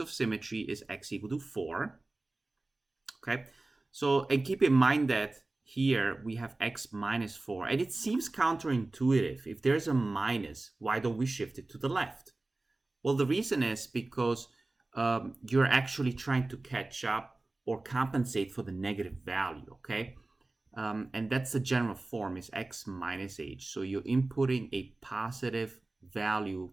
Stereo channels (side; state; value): left; quieter; 3.1 dB